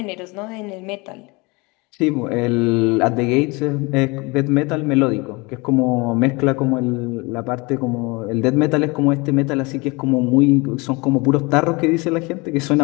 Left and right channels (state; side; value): quieter; right; 26.3 dB